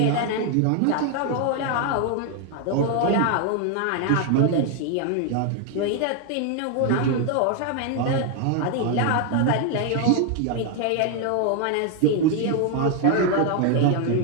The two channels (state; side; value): different; both; correlation 0.01